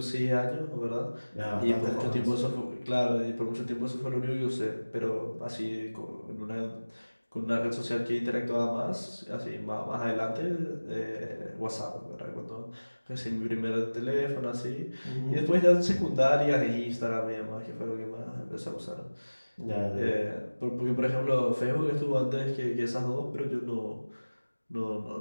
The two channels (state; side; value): inverted; both; correlation -1.00